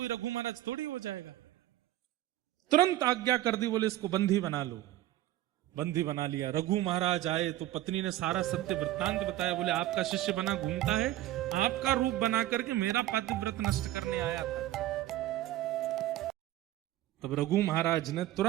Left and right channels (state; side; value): quieter; left; 14.5 dB